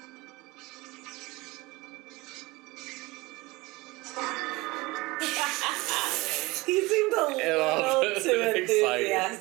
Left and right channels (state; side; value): quieter; left; 22.2 dB